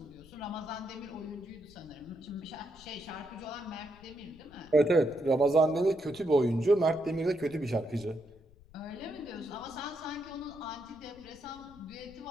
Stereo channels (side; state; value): left; noise; rumble, 23 dB below the sound